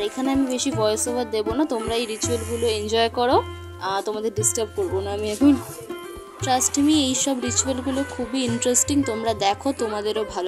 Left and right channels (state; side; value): identical; both; correlation 1.00